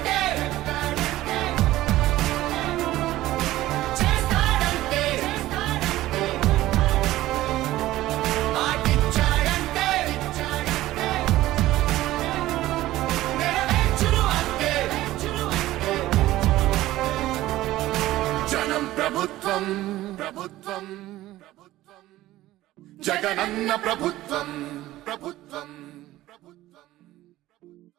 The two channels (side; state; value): left; quieter; 15.8 dB